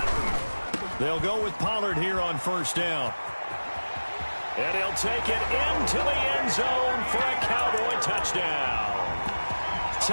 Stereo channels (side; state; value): both; inverted; correlation -1.00